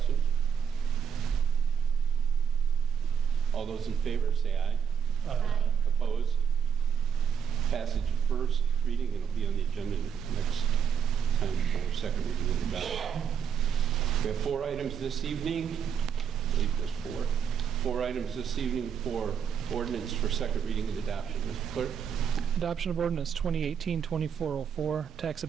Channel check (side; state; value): left; quieter; 7.4 dB